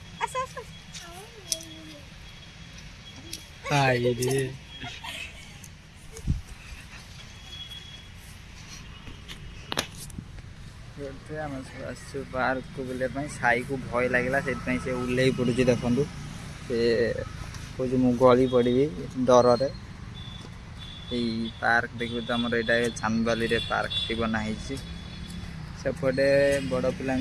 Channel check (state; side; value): identical; both; correlation 1.00